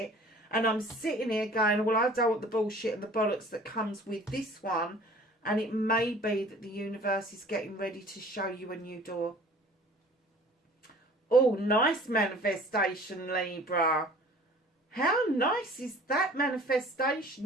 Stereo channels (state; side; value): normal; both; correlation 0.49